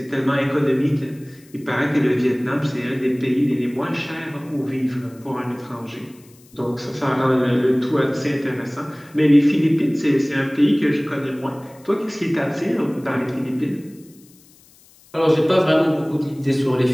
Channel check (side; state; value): left; noise; hiss, 27 dB below the sound